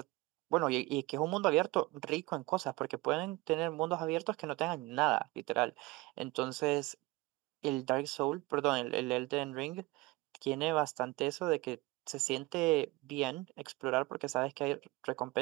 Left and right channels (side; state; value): left; quieter; 21.6 dB